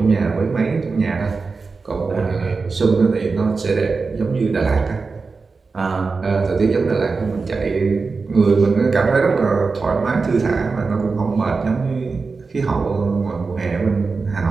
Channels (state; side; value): quieter; left; 4.4 dB